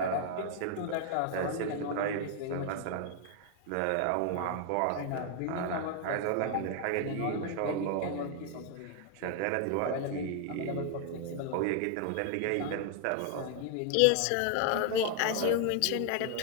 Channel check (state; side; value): different; both; correlation 0.00